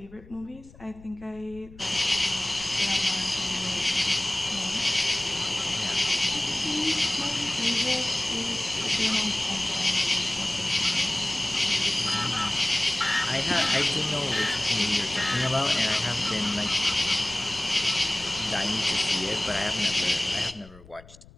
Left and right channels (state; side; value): noise; left; rumble, 21 dB below the sound